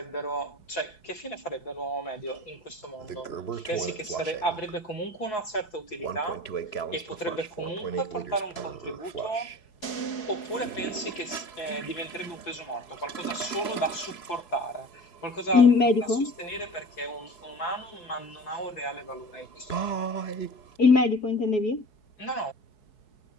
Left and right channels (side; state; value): right; late; 4.7 ms